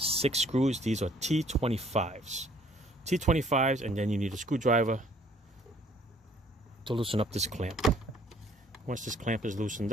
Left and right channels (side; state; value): both; normal; correlation 0.60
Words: screws. These are T25s. T25s, and then you need a screwdriver to loosen up this clamp. Once this clamp is loosened